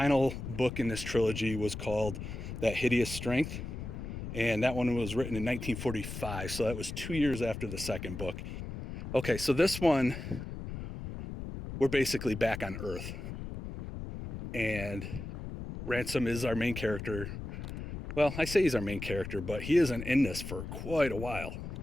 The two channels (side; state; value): left; noise; rumble, 8 dB below the sound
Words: book in this trilogy was called That Hideous Strength. And that one was written in 1945. So that was 2 years after the second book. Okay, so this one, we're basically back on Earth. And Ransom is our main character. Well, I say he's our main character, but he isn't in this for quite a while.